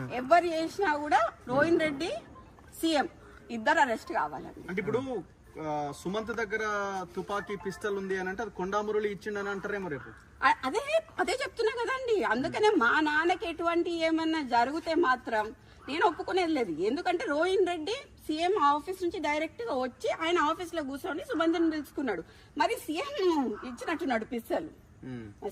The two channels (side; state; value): both; identical; correlation 1.00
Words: ఎవరు చేసినా కూడా రోహిన్ రెడ్డి, సీఎం ఇద్దరు అరెస్ట్ కావాలండి. అంటే ఇప్పుడు సుమంత్ దగ్గర తుపాకీ పిస్టల్ ఉంది అని అంటే అది కొండా మురళి ఇచ్చిండని అంటారేమో రేపు. అదే చెప్తున్నా కదండి. అందుకనే మా నాన్నకి ఎటువంటి ఏమన్నా జరిగితే మాత్రం నేను ఒప్పుకునేది లేదు. ఎందుకంటే రోహిన్ రెడ్డి సీఎం ఆఫీస్ నుంచి డైరెక్ట్ గా వచ్చి ఆయన ఆఫీస్ లో కూర్చొని సుమంత్ని పిలుచుకున్నాడు. మరి సీఎం ఇచ్చినట్టున్నాడు పిస్తల్.